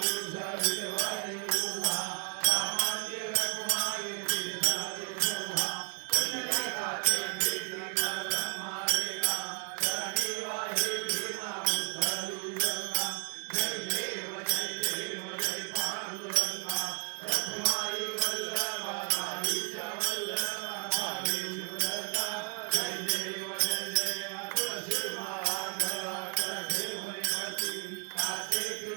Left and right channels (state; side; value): quieter; left; 38.3 dB